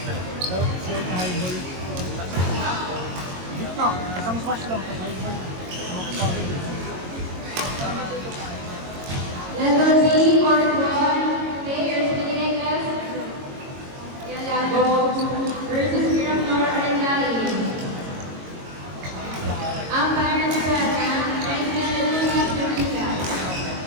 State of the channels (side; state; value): left; late; 22 ms